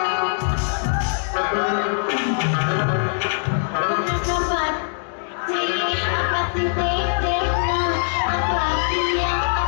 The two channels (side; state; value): right; silent; digital silence